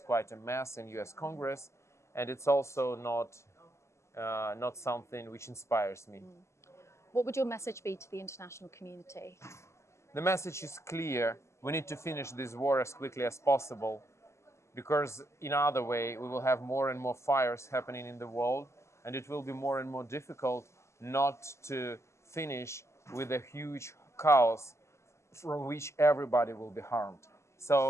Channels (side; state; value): right; late; 0.13 ms